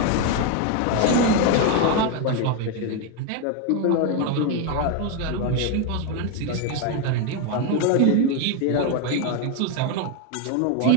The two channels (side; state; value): both; different; correlation 0.02